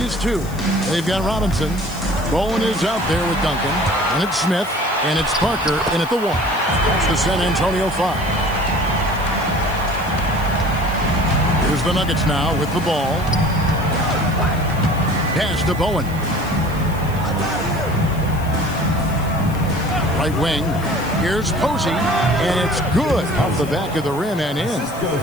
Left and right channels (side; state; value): left; noise; hiss, 19 dB below the sound